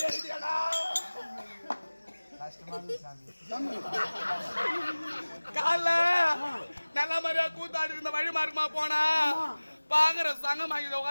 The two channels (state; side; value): inverted; both; correlation -1.00